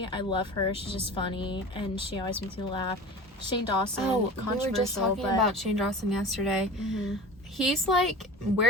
I love her. She's just funny, and she always makes me laugh. Shane Dawson, controversial. We were just talking about Shane Dawson yesterday. He's like,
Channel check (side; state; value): both; normal; correlation 0.36